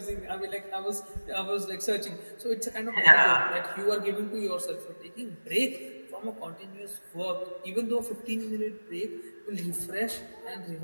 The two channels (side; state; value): both; inverted; correlation -1.00